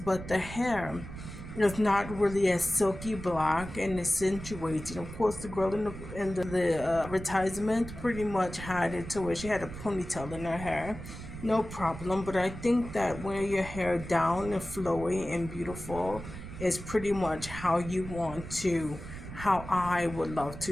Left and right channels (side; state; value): right; noise; rumble, 11 dB below the sound